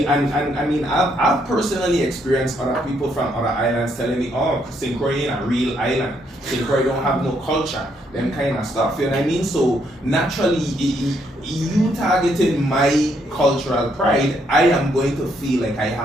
I mean I've personally experienced other people from other islands telling me, oh, St. Croix ain't a real island. St. Croix don't have no culture, them kind of stuff, you know what I mean? So naturally you targeting my cultural pride, I am going to feel like I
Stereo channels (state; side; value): normal; both; correlation 0.73